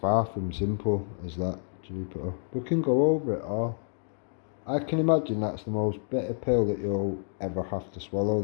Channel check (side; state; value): right; silent; digital silence